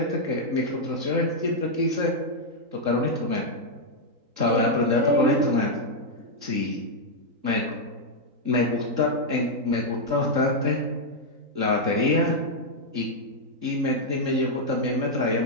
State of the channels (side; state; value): left; late; 3.7 ms